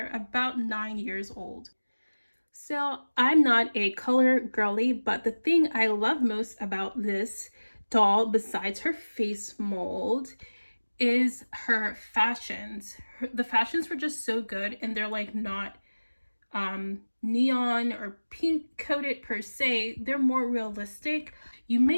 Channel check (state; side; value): inverted; both; correlation -1.00